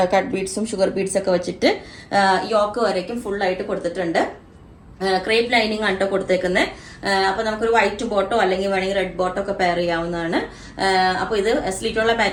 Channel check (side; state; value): both; identical; correlation 1.00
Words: കട്ട് ബീഡ്സും ഷുഗർ ബീഡ്സ് ഒക്കെ വെച്ചിട്ട് യോക്ക് വരയ്ക്കും ഫുൾ ആയിട്ട് കൊടുത്തിട്ടുണ്ട്. ക്രേപ്പ് ലൈനിങ് ആണ് കേട്ടോ കൊടുത്തേക്കുന്നത്. അപ്പൊ നമുക്കൊരു വൈറ്റ് ബോട്ടോ അല്ലെങ്കിൽ വേണമെങ്കിൽ റെഡ് ബോട്ടോ ഒക്കെ പെയർ ചെയ്യാവുന്നതാണ്. അപ്പൊ ഇത് സ്ലിറ്റുള്ള